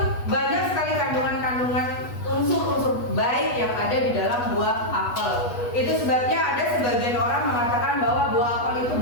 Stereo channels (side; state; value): right; late; 8.2 ms